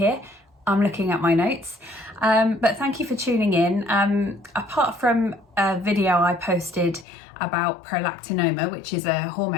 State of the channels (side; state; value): right; drops out; at 7.1 s